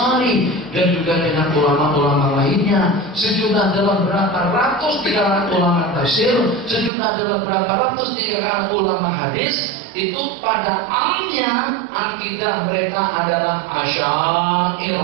dan juga dengan ulama-ulama lainnya. Sejumlah dalam berapa ratus di kalangan ulama tafsir, sejumlah dalam berapa ratus di kalangan ulama hadis. Itu pada amnya akidah mereka adalah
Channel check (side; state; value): left; drops out; at 6.9 s